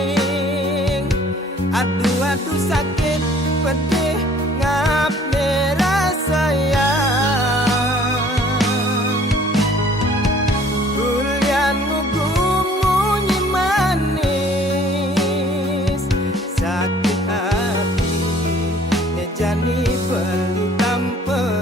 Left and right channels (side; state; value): both; normal; correlation 0.55